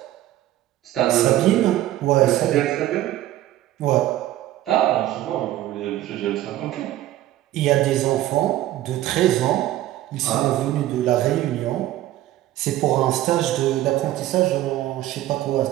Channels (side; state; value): left; quieter; 14.4 dB